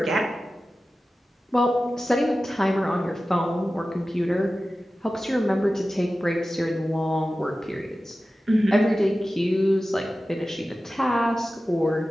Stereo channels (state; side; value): normal; both; correlation 0.95